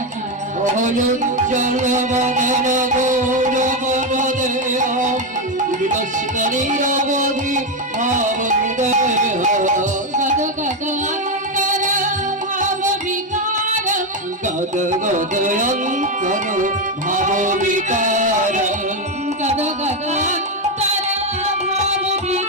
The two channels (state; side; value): normal; both; correlation 0.08